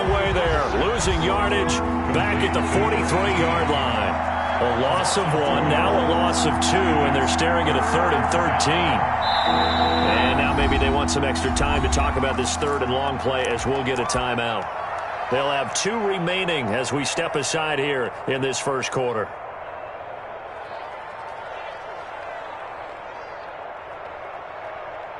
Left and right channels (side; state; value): both; identical; correlation 1.00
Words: way there. Losing yardage back at the 43-yard line. A loss of 1, now a loss of 2, and they're staring at a 3rd and 13. And now maybe they want some extra time to talk about this 3rd and long play as we'll get a timeout. They'll have 2 remaining as we step aside here in this first quarter.